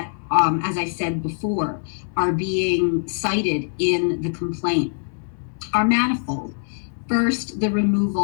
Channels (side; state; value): right; silent; 64 dB below the other